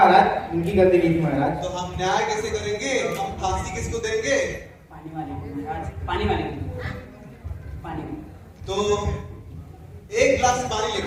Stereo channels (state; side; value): identical; both; correlation 1.00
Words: उनकी गलती नहीं थी महाराज। तो हम न्याय कैसे करेंगे? हम फांसी किसको देंगे? पानी वाले को महाराज, पानी वाले को। पानी को। तो एक गिलास पानी